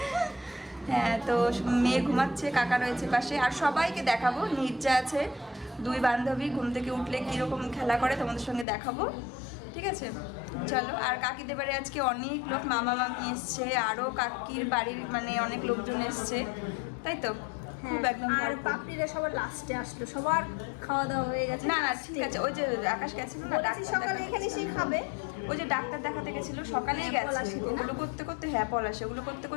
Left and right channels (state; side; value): drops out; right; at 8.7 s